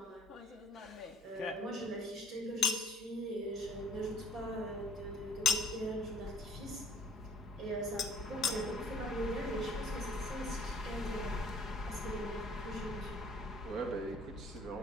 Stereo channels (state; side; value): normal; both; correlation 0.54